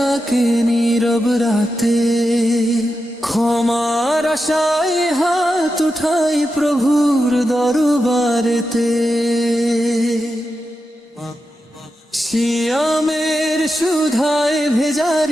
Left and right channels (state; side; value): normal; both; correlation 0.89